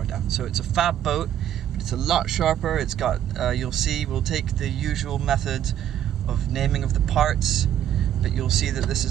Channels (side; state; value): left; quieter; 10.8 dB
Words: down. So it's a fab boat, but it's a lot sharper. It's got, you'll see, we'll take the usual method of naming of the parts, but you'll see that this